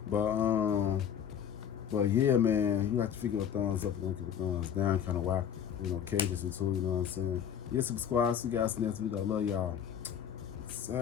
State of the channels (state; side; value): quieter; right; 8.7 dB